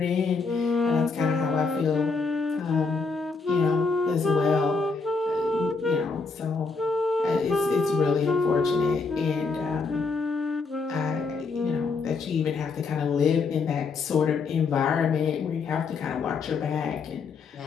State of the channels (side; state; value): right; quieter; 4.5 dB